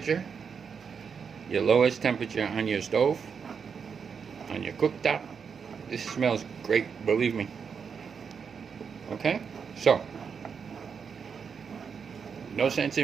Your lowest temperature on your stove, on your cooktop. This smells great, believe me. Okay? So, no sense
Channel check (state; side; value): quieter; left; 6.3 dB